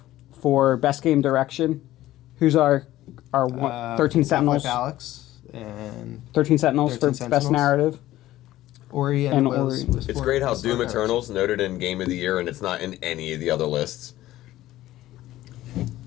for Best Game Direction. Who's our 13 Sentinels? Half-Life Alyx and... 13 Sentinels for Best Narrative. Ori and Ori. It's great how Doom Eternal's noted in Game of the Year and it's not in any of the other lists.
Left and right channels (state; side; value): quieter; right; 15.1 dB